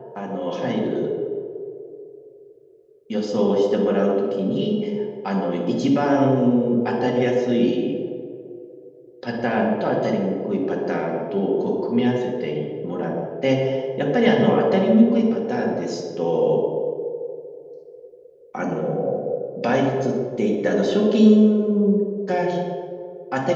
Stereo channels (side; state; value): both; identical; correlation 1.00